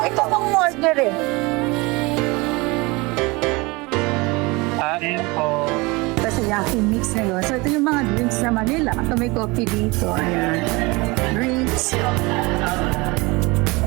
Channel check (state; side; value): quieter; left; 24.7 dB